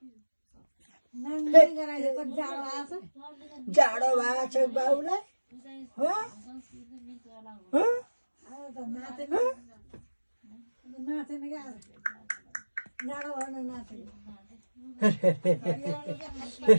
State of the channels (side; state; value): both; inverted; correlation -1.00